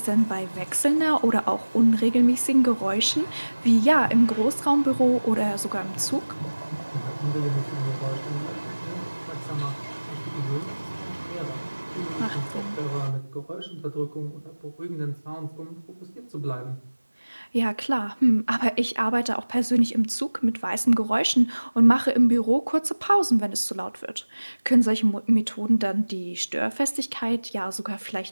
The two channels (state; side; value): inverted; both; correlation -1.00